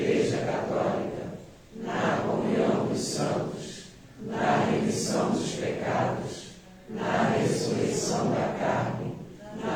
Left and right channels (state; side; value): identical; both; correlation 1.00